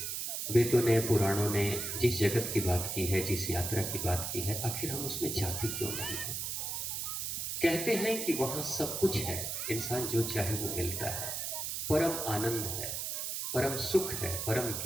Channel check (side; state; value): right; noise; hiss, 3 dB below the sound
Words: वेदों ने, पुराणों ने जिस जगत की बात की है, जिस यात्रा की बात की है, आखिर हम उसमें जाते क्यों नहीं हैं? कहते हैं कि वहां सब कुछ है, इंसान जो चाहे वो मिलता है, परम आनंद है, परम सुख है, परम